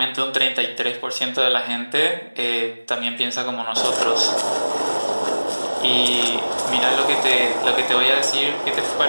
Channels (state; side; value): inverted; both; correlation -1.00